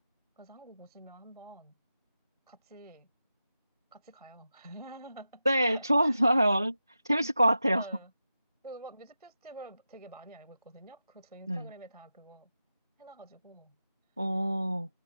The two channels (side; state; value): both; inverted; correlation -0.91